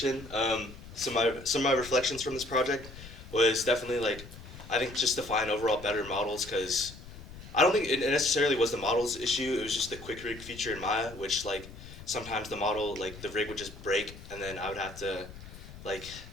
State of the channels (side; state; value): left; noise; rumble, 15 dB below the sound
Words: Some of my reflections from this project was definitely like, I think just to find overall better models, because I don't think it necessarily was the model's issue. It was just the quick rig feature in Maya, which like sometimes the model, like the rig would just break, and then I would have to like